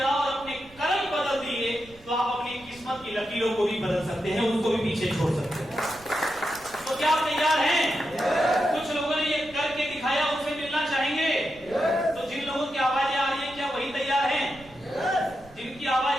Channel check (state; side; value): noise; right; rumble, 24 dB below the sound